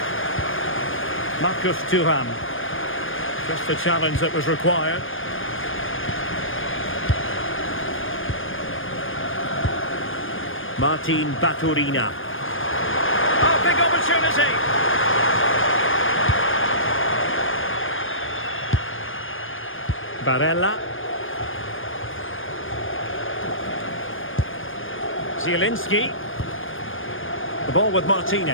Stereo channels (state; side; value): late; right; 0.59 ms